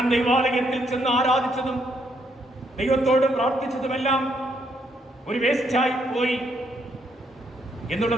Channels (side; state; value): both; normal; correlation 0.73